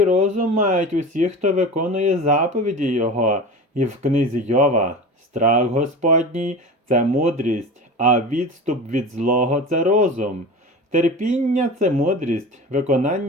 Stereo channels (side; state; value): both; normal; correlation 0.32